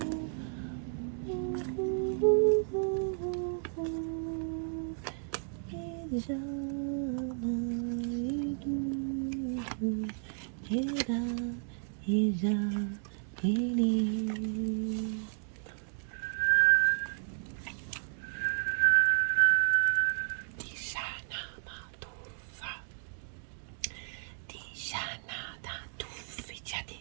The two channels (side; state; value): left; silent; 56 dB below the other